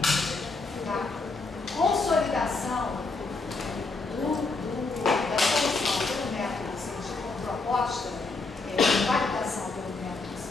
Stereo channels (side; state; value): right; quieter; 3.7 dB